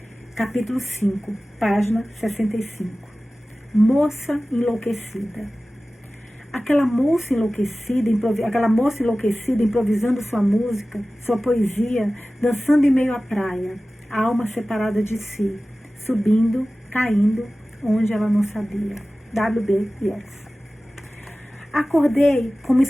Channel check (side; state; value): both; normal; correlation 0.96